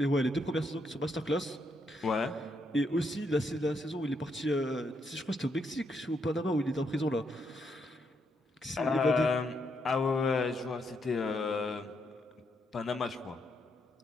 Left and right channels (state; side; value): normal; both; correlation 0.78